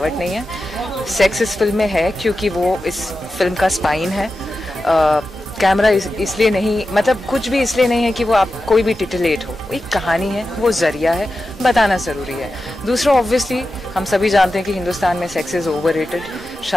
नहीं है। सेक्स इस फिल्म में है क्योंकि वो इस फिल्म का स्पाइन है। कैमरा इसलिए नहीं, मतलब कुछ भी इसलिए नहीं है कि वो आप कोई भी टिटिलेट हो। एक कहानी है, वो जरिया है, बताना ज़रूरी है। दूसरा, ऑब्वियसली हम सभी जानते हैं कि हिंदुस्तान में सेक्स इज़ ओवररेटेड।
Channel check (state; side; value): normal; both; correlation 0.92